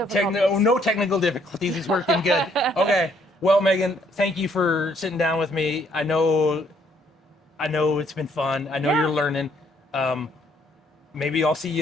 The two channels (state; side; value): normal; both; correlation 0.67